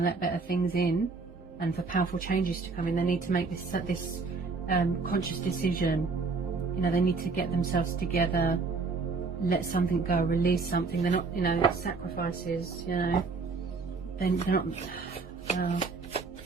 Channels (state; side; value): quieter; left; 4.3 dB